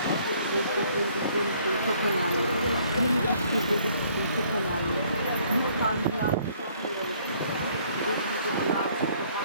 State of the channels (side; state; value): both; inverted; correlation -0.62